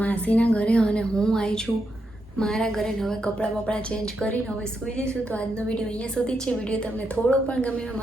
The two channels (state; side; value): normal; both; correlation 0.83